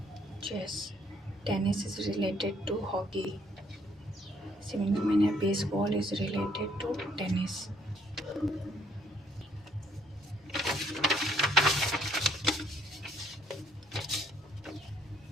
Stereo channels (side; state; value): both; normal; correlation 0.66